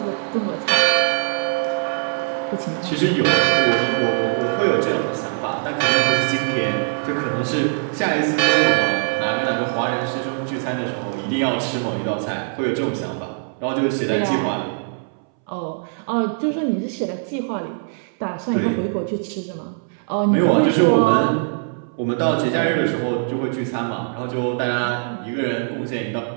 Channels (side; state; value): left; silent; 65 dB below the other